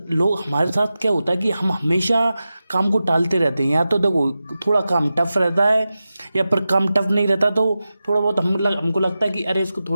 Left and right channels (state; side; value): inverted; both; correlation -0.93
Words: लोग हमारे साथ क्या होता है कि हम हमेशा काम को टालते रहते हैं। या तो देखो थोड़ा काम टफ रहता है या फिर काम टफ नहीं रहता तो थोड़ा बहुत हमको लगता है कि अरे इसको